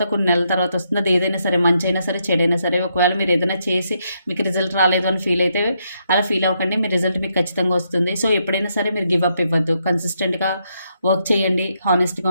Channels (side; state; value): both; inverted; correlation -0.78